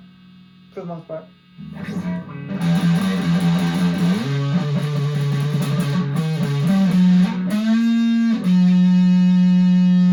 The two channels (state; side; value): identical; both; correlation 1.00